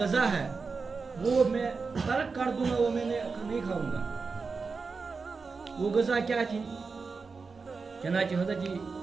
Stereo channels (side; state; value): left; quieter; 4.7 dB